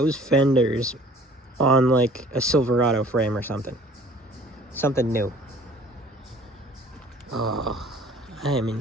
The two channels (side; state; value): both; normal; correlation 0.51